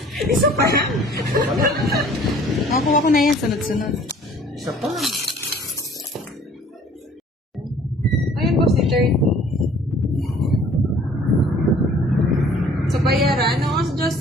Isa pa yan. Nakakuha ko na yan, sunod-sunod. Isa pa. Ayun, boss, ni 30. Sa bayaran, no? Sa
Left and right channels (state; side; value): normal; both; correlation 0.53